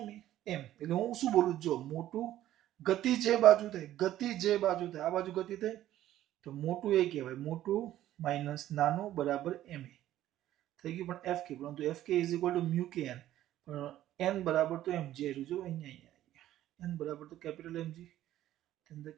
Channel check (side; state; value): left; quieter; 13.3 dB